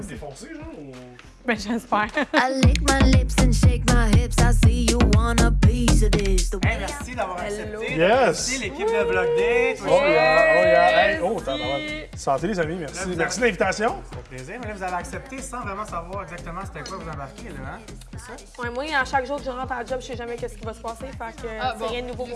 se défoncer, genre? Ou... Ben, j'espère. I lick my lips and shake my hips. I see you want a piece of this. Hey, merci d'avoir accepté. Yes. Merci l'équipe de Bloc D. Oh yeah. Hey, oh, t'as santé, les amis, merci. Là, vous Merci de l'invitation. Ça fait plaisir, mais là, vous avez accepté sans vraiment savoir exactement c'était quoi vous embarquez, là, hein? C'est ça? Ouais, moi, à chaque jour que je rentre à la job, je sais jamais qu'est-ce qui va se passer. Fait que c'est rien de nouveau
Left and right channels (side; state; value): both; identical; correlation 1.00